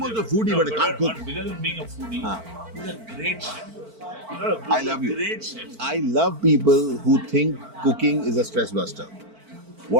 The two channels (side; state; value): left; late; 4.5 ms